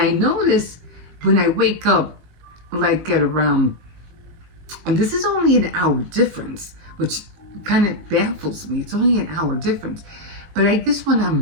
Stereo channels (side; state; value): left; late; 19 ms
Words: notice when I wake up, like at around, and this is only an hour difference, which kind of baffles me. It's only an hour difference. But I guess when